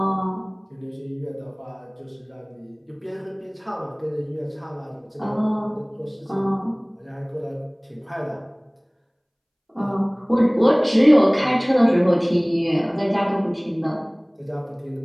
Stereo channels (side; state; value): both; identical; correlation 1.00